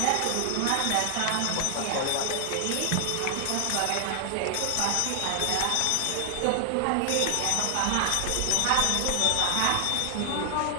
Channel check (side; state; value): both; different; correlation 0.00